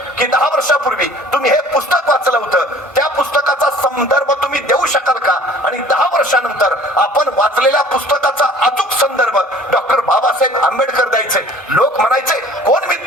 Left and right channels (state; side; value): normal; both; correlation 0.49